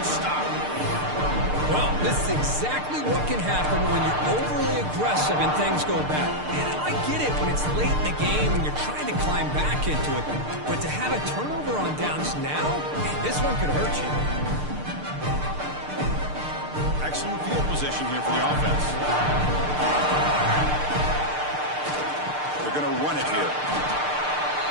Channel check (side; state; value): left; late; 6.7 ms